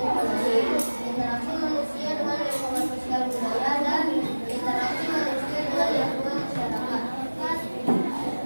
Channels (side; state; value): both; inverted; correlation -1.00